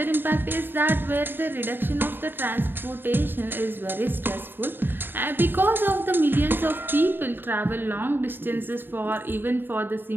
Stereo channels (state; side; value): late; left; 0.097 ms